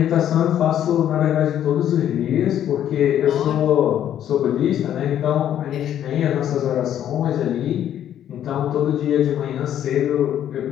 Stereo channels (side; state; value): right; quieter; 10.6 dB